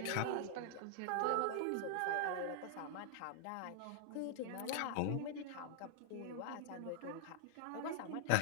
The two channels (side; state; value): both; different; correlation 0.00